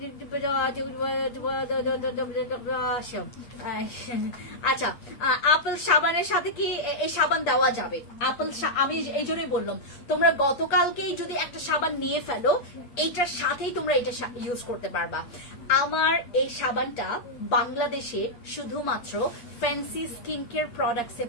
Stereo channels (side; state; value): right; late; 8.5 ms